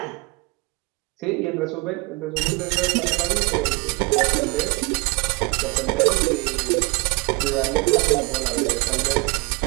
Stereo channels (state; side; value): quieter; left; 27.7 dB